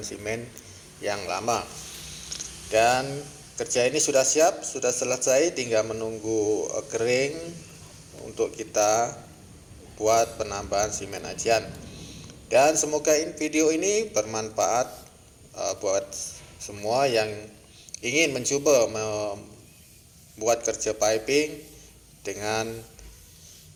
semen yang lama. Dan kerja ini sudah siap, sudah selesai, tinggal menunggu kering untuk kita buat penambahan semen ajian. Dan semoga video ini bermanfaat buat semua yang ingin mencoba membuat kerja piping dengan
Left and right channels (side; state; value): both; identical; correlation 1.00